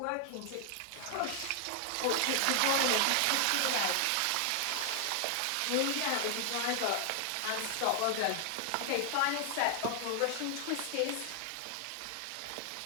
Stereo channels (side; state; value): both; different; correlation 0.00